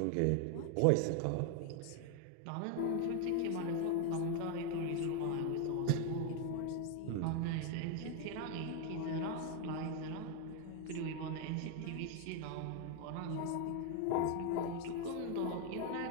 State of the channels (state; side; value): different; both; correlation 0.01